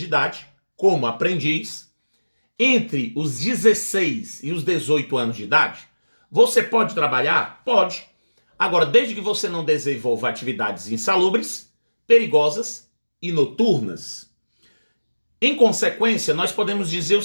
idade, como aprendiz. Entre os 16 e os 18 anos de idade, você pode trabalhar? Pode. Agora, desde que você não desenvolva atividades insalubres, perigosas e noturnas. Em consequência, nós podemos dizer o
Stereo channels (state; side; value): inverted; both; correlation -1.00